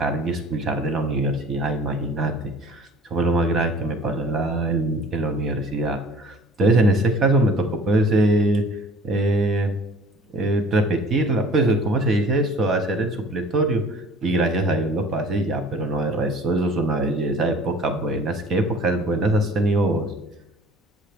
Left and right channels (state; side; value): normal; both; correlation 0.48